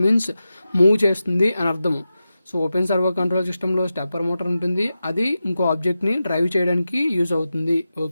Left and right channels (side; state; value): both; inverted; correlation -0.92